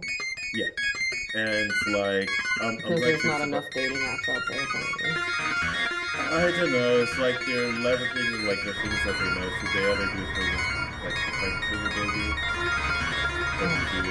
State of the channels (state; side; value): identical; both; correlation 1.00